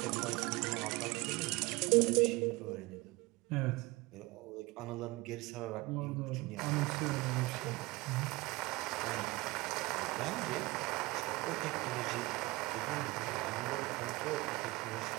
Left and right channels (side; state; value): left; quieter; 22.2 dB